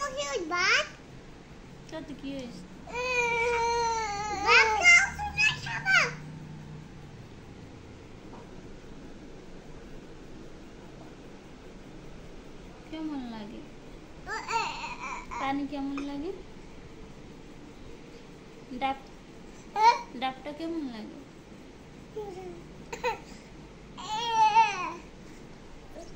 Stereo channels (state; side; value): identical; both; correlation 1.00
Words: তাতে কি হয়েছে? কেমন লাগে? পানি কেমন লাগে? ডাবটা কেমন লাগে?